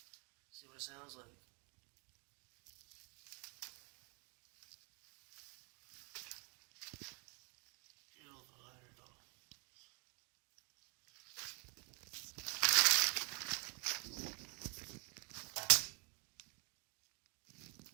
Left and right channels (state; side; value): quieter; left; 33.5 dB